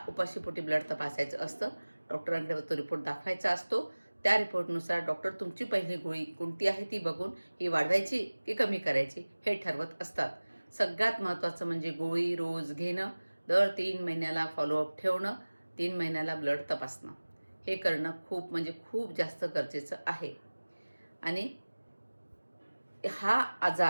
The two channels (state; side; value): inverted; both; correlation -1.00